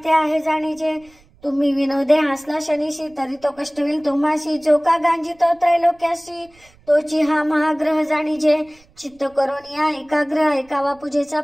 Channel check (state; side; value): noise; right; rumble, 30 dB below the sound